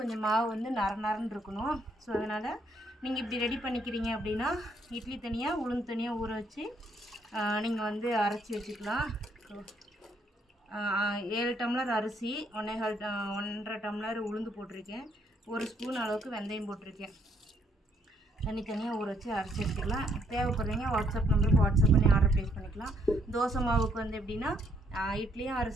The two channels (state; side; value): normal; both; correlation 0.70